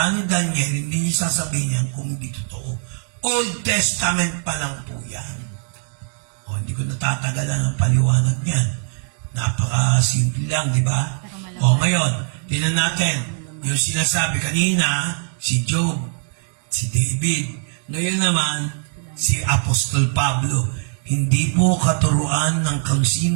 ni Daniel, hindi niya sasabihin yan kung hindi totoo. Old Testament pa lang po yan. Hindi ko natatagalan ang paliwanag niyan. Napaka-simple lang, di ba? Ngayon, tingnan natin, yung sinasabi kanina, si Job, si David, ngayon naman, si Apostol Pablo. Hindi po katuruan ng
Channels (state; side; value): silent; left; 58 dB below the other